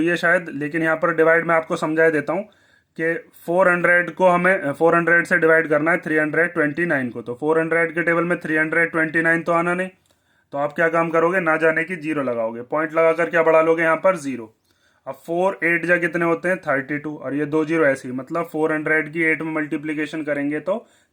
है शायद, लेकिन यहाँ पर डिवाइड मैं आपको समझा देता हूँ कि 400 को हमें 400 से डिवाइड करना है 329 को। तो 400 के टेबल में 329 तो आना नहीं, तो आप क्या काम करोगे, ना जाने की 0 लगाओगे, पॉइंट लगाकर क्या बढ़ा लोगे यहाँ पर 0। अब 4 8 जा कितने होते हैं 32, और ये 2 0 ऐसे ही, मतलब 400 की 8 में मल्टीप्लीकेशन करेंगे तो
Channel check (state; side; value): identical; both; correlation 1.00